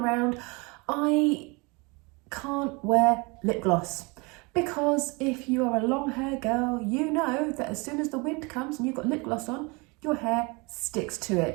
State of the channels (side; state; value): left; quieter; 28.1 dB